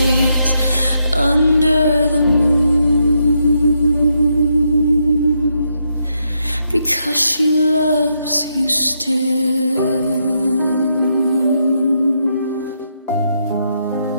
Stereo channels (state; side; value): inverted; both; correlation -0.79